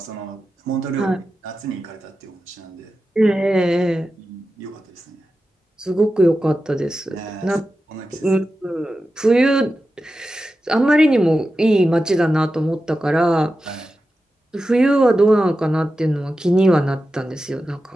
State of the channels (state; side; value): normal; both; correlation 0.92